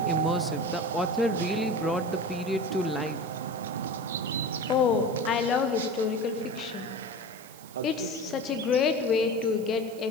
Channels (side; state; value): right; noise; hiss, 21 dB below the sound